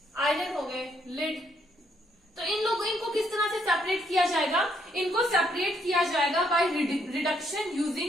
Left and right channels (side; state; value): both; normal; correlation 0.72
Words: आयरन हो गए, लिड। तो इनको किस तरह से सेपरेट किया जाएगा? इनको सेपरेट किया जाएगा by reduction